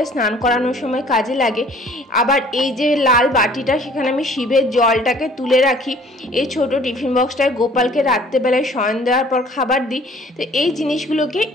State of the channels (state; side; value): normal; both; correlation 0.54